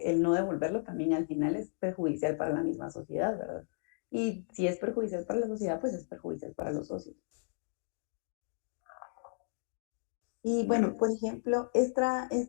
el no devolverlo también al final es perjudicial para la misma sociedad, ¿verdad? Y si es perjudicial para la sociedad, pues es perjudicial para los socios. Y bueno, por ejemplo, esta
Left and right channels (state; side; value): silent; right; digital silence